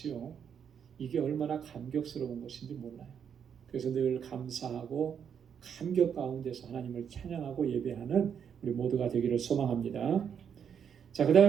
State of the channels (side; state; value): left; quieter; 7.8 dB